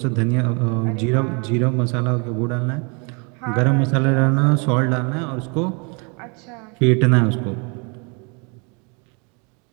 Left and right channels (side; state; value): left; quieter; 33.0 dB